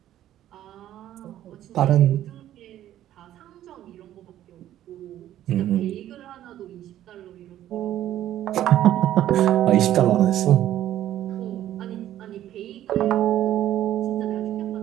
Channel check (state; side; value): quieter; left; 12.5 dB